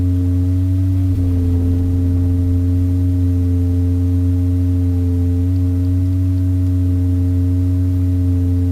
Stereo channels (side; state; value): both; identical; correlation 1.00